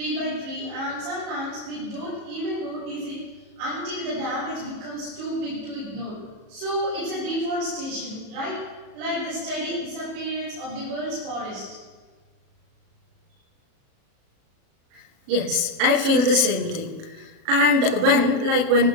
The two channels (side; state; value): left; late; 37 ms